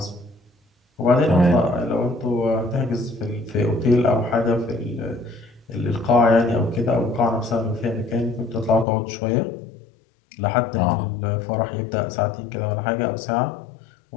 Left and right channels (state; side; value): drops out; right; at 8.8 s